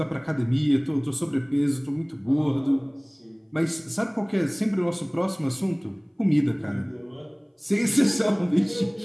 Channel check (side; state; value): both; identical; correlation 1.00